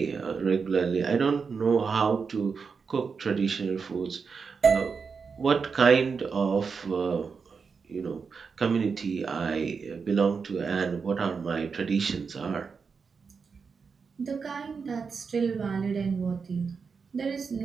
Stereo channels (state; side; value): quieter; left; 5.5 dB